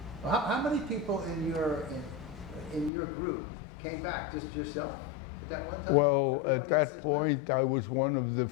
how many people in your group came back? Just yourself at that one time? Well, Everybody at else that has point, I was one of the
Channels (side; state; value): right; drops out; at 2.9 s